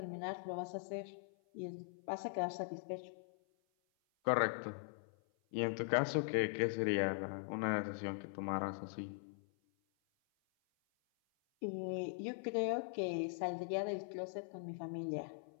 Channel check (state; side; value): silent; right; 50 dB below the other